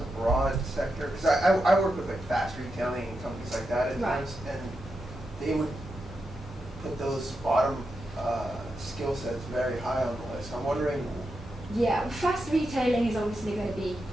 a broad sector? Because I work with like fast retailing and companies like that at times, and they would put those bottom skill sets very high on the list. I'm wondering. Yeah, fast retailing is obviously going to be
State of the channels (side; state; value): both; normal; correlation 0.87